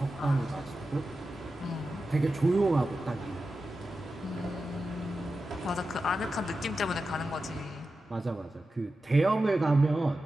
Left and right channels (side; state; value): both; normal; correlation 0.91